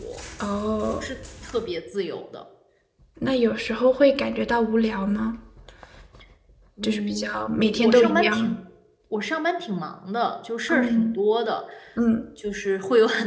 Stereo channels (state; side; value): identical; both; correlation 1.00